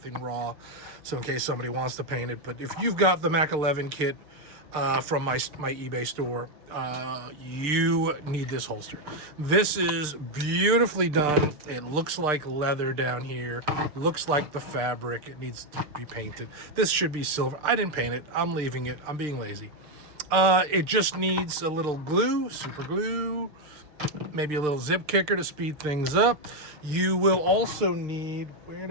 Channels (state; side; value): late; left; 6.6 ms